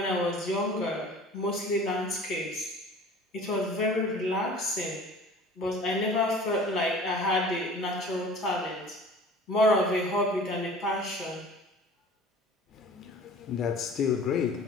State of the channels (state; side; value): normal; both; correlation 0.44